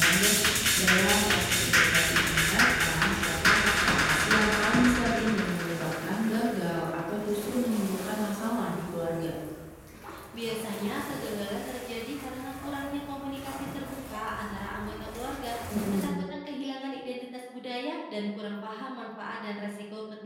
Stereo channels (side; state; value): both; identical; correlation 1.00